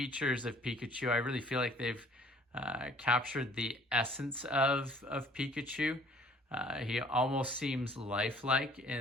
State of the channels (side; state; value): both; normal; correlation 0.55